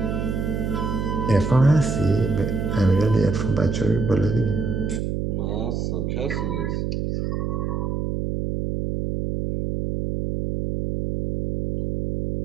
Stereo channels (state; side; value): noise; right; hum, 2 dB below the sound